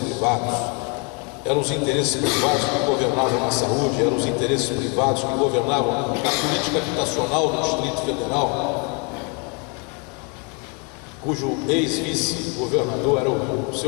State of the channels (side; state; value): right; quieter; 33.3 dB